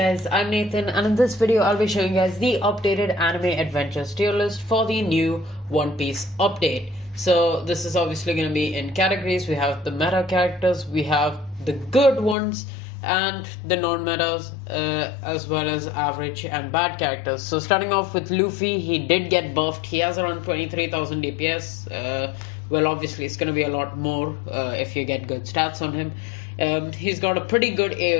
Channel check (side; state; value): right; drops out; at 12.4 s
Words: I'm Nathan and in this video I'll be showing you guys the updated anime adventures tier list for the new One Piece update. So this is obviously going to be in categories. We have the meta characters, we have the good ones and the non-metas as well as average and bad characters. So starting off with Luffy, he did get buffed. He has around 23,000 DPS. Well, obviously it's going to be a lot more if you get good stats on him. He's got a pretty good